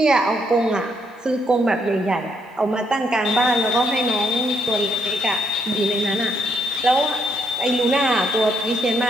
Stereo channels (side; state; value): both; normal; correlation 0.74